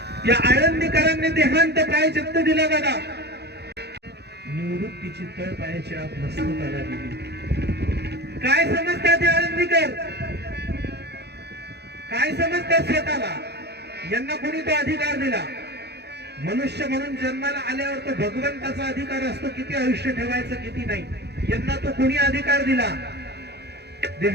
या आळंदीकरांनी देहांत प्रायश्चित्त दिला दादा. निवृत्तीची तळ पायाची आत मस्तकाला दिली. काय समजतात हे आळंदीकर? काय समजतात स्वतःला? यांना कोणी तो अधिकार दिला? मनुष्य म्हणून जन्माला आल्यावर तो भगवंताचा अधिकार असतो किती आयुष्य ठेवायचं किती नाही. यांना तो कोणी अधिकार दिला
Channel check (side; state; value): left; late; 0.48 ms